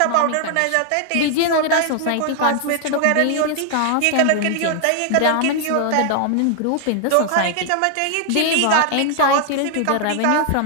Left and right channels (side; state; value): both; different; correlation 0.00